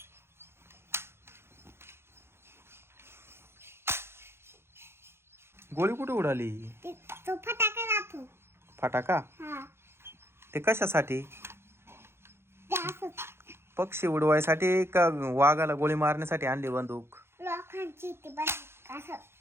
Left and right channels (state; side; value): late; left; 0.12 ms